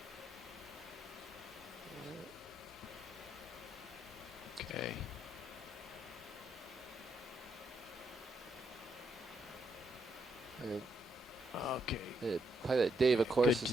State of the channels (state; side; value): normal; both; correlation 0.78